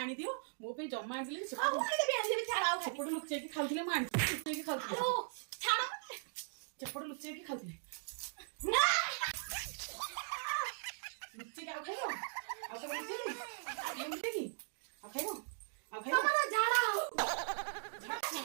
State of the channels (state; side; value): silent; left; digital silence